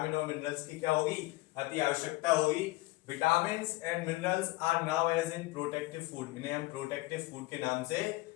और मिनरल्स की क्या होगी? अति आवश्यकता होगी। Vitamin and minerals are now as in protective food. इन्हें हम प्रोटेक्टिव फूड के नाम से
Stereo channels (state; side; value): quieter; right; 20.3 dB